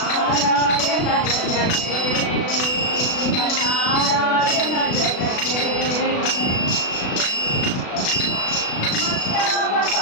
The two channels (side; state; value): right; late; 36 ms